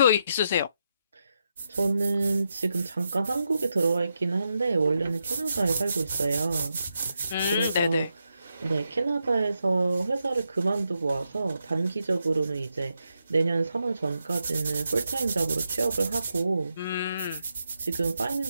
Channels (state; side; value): inverted; both; correlation -0.84